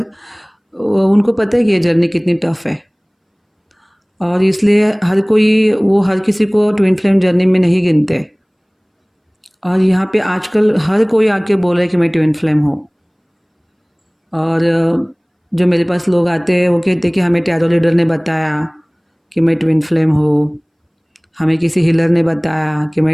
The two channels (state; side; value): identical; both; correlation 1.00